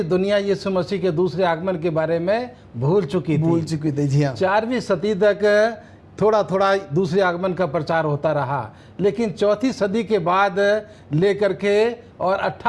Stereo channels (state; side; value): identical; both; correlation 1.00